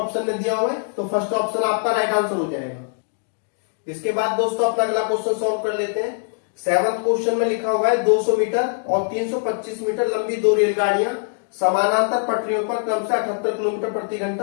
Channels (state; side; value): silent; right; digital silence